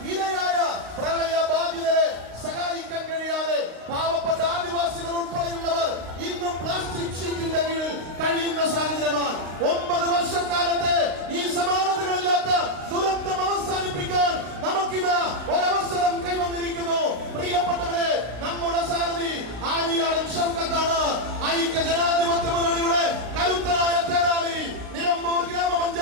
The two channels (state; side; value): late; left; 35 ms